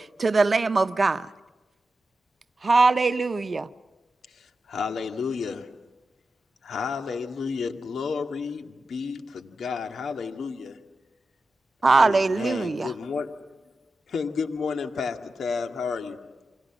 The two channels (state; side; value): normal; both; correlation 0.91